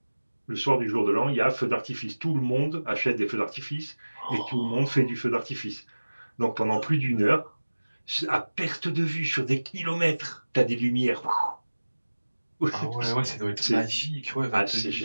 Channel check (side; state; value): both; inverted; correlation -1.00